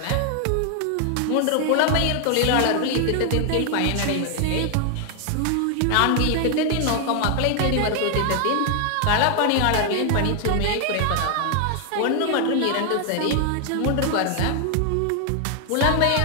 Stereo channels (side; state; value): both; different; correlation 0.00